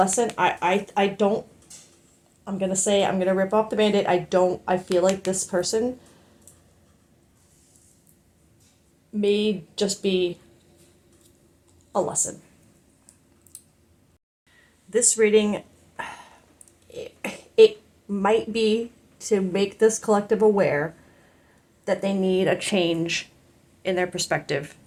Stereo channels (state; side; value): identical; both; correlation 1.00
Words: I don't, I'm going to say, I'm going to rip off the Band-Aid. I feel like this person may just be a lesson. This reading, it might be to make this collective aware that they need a change in their perspective